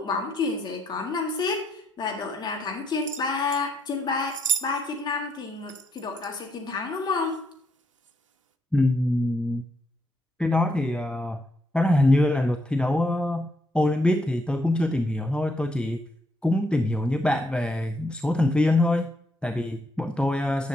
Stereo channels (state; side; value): normal; both; correlation 0.76